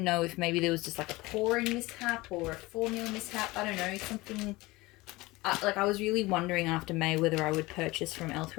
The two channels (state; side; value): quieter; right; 21.1 dB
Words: know if maybe there was just like a pouring mishap or a formula mishap. I don't know, something. I was really wondering after May whether I would purchase from